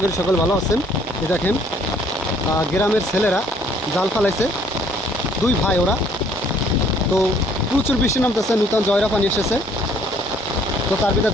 করি সকল ভালো আছেন। এই দেখেন গ্রামের ছেলেরা জাল ফালাইছে, দুই ভাই ওরা। তো প্রচুর বৃষ্টি নামতেছে, নূতন জয়রা পানি এসেছে। তো তার ভিতরে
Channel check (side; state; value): both; normal; correlation 0.61